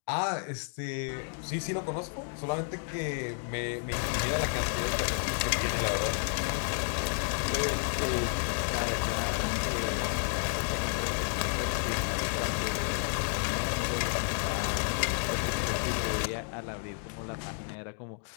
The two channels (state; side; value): silent; right; 55 dB below the other